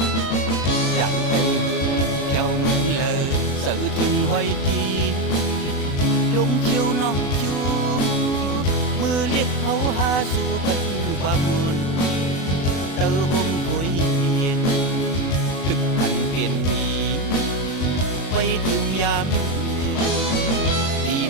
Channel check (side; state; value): right; late; 36 ms